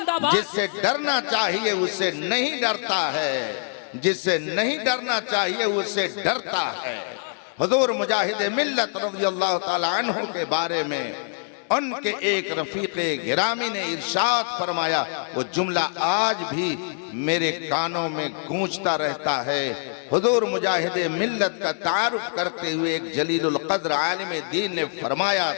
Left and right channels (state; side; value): silent; right; digital silence